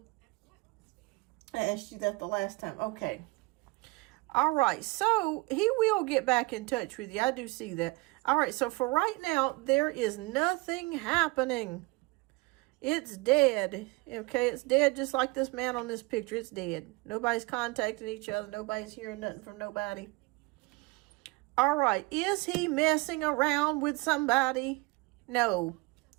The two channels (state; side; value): quieter; left; 24.4 dB